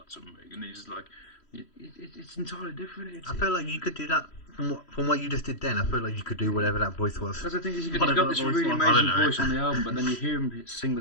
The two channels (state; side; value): late; right; 3.1 ms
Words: something, and he's just like, it's entirely different. I feel like you could do that from what you just did then. I feel like you could do whatever that voice was. Because I think he's got this really amazing voice on the album, but then you hear him sing the